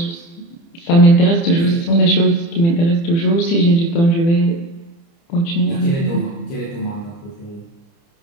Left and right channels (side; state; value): right; late; 30 ms